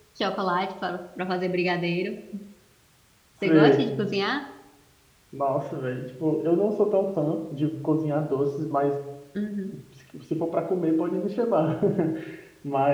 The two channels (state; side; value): identical; both; correlation 1.00